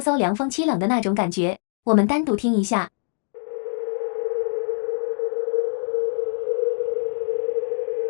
凉风凄冷的那种感觉。我们单独听一下。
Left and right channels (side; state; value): right; silent; digital silence